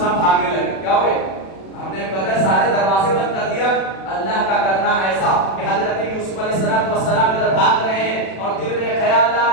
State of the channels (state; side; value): late; right; 36 ms